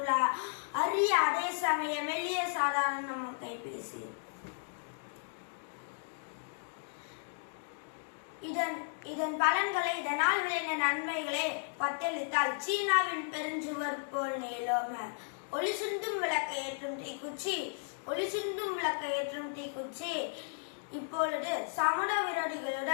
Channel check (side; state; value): right; silent; digital silence